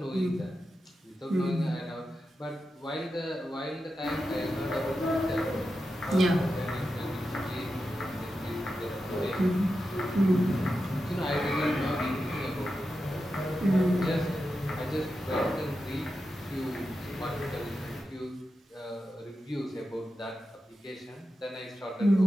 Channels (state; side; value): normal; both; correlation 0.90